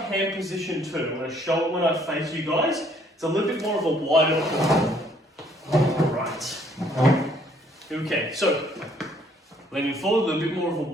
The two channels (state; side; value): normal; both; correlation 0.63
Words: position too. When I face you guys, it's a little bit more of a wider pull. Right. Okay, so leaning forward, a little bit more of a